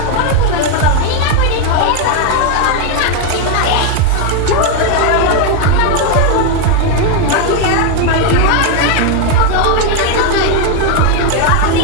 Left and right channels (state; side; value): different; both; correlation 0.01